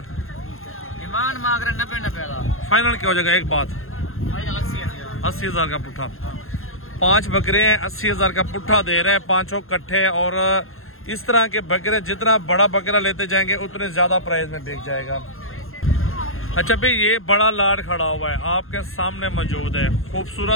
डिमांड मांग रहे 90,000। फाइनल क्या हो जाएगा? एक बात 80,000 का पुट्ठा। 5 बकरे हैं, 80,000 का पुट्ठा दे रहे हैं, 5 कट्ठे। और इस तरह के बकरे जितना बड़ा बकरा लेते जाएंगे उतने ज्यादा प्राइस में बिक जाएगा। अच्छा भाई, ये बड़ा लाड खड़ा हुआ है आपके सामने मौजूद है।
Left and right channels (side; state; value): right; late; 0.61 ms